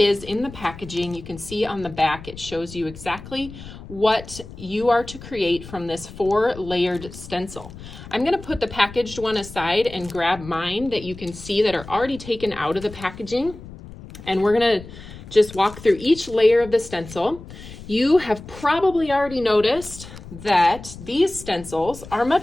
in the packaging. You can see on the back it shows you exactly what you are to create from this 4-layered stencil. I'm going to put the packaged one aside and grab mine that you can see that are already taken out of the packaging, and we're going to just walk through each layer of the stencil. You have probably already noticed that these stencils are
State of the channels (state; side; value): noise; left; rumble, 15 dB below the sound